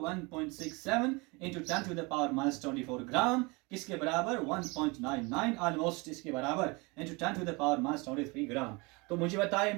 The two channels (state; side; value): quieter; left; 27.1 dB